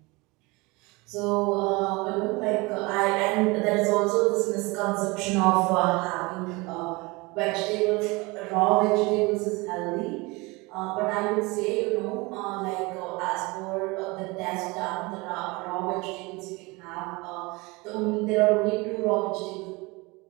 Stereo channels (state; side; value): quieter; left; 24.9 dB